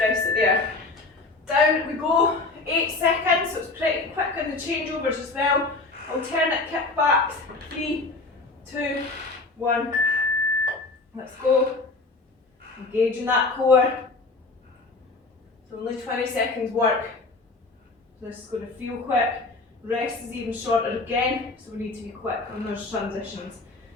rest it there. Down we go, 8 seconds, so it's pretty quick on the changeovers as well. Alternate kickbacks, 3, 2, 1, let's go. Engaging that core. So only 20 seconds work. So this is going to feel quick. Rest is even shorter again, so we need to be quick on those transitions.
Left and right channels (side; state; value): right; quieter; 3.5 dB